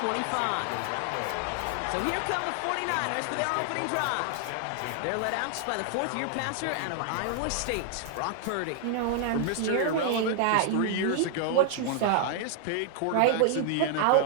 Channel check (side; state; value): both; different; correlation 0.00